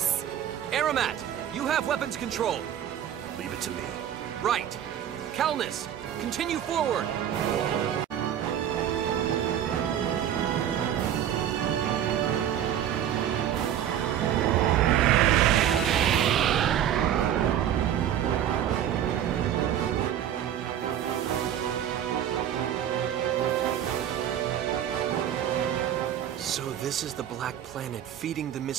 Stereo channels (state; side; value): quieter; left; 10.3 dB